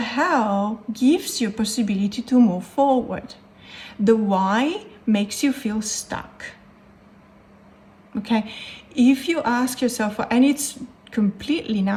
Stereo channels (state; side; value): identical; both; correlation 1.00